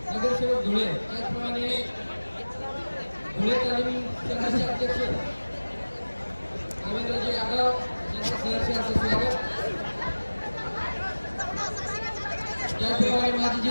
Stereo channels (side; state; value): both; inverted; correlation -1.00